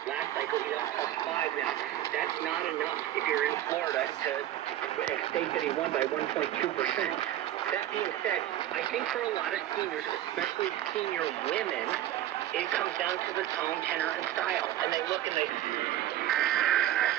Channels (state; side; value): quieter; left; 13.2 dB